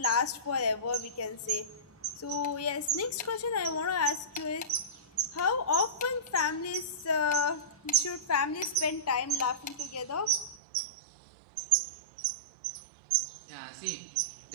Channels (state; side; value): drops out; left; at 10.6 s